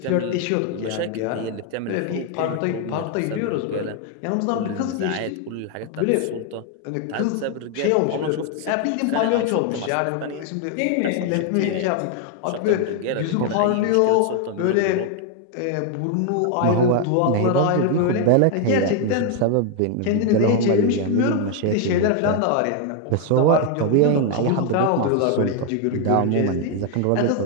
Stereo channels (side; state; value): both; different; correlation 0.01